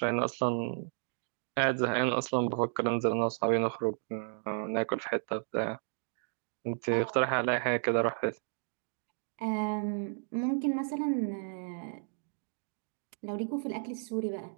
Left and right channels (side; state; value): left; silent; digital silence